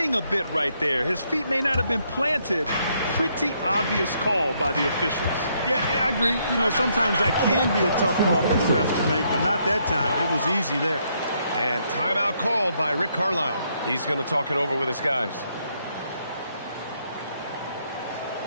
a bit right there. His feet may not have been planted. Pretty obvious call by the officials. Yeah, I agree. You know, sometimes that can be a tough call for the refs to make, but not that time. It was easy there. And timeout called by Rick Carlisle. He's going to talk it over with his guys.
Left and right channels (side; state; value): both; inverted; correlation -0.73